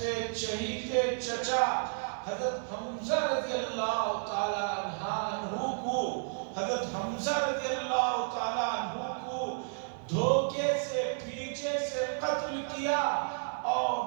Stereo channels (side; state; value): left; silent; 56 dB below the other